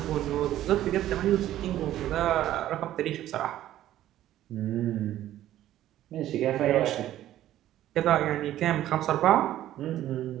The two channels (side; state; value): left; quieter; 13.1 dB